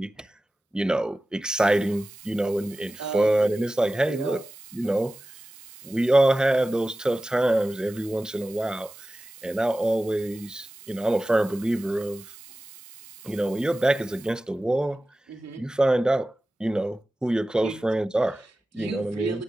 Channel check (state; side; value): normal; both; correlation 0.95